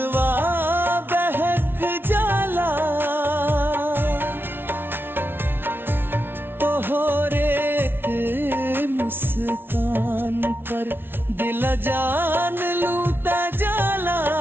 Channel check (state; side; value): late; left; 0.11 ms